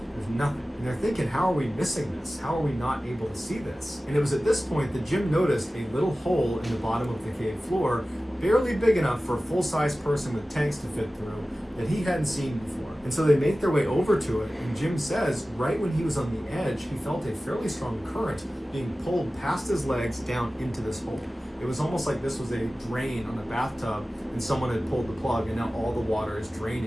there's nothing. And they're thinking, how are we missing this? How are we not able to see this? And it was at this point that Jim noticed a little hole in the bottom of the cave floor, barely big enough for a full-size person with tanks to fit through, that he hadn't seen before. And so they make their way over to it, and Jim says right when he was on the edge, he felt a fairly strong current being pulled past his legs down into this hole. It was almost like this was a drain on a bathtub and someone had pulled the plug and now all the water is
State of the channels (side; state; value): both; normal; correlation 0.96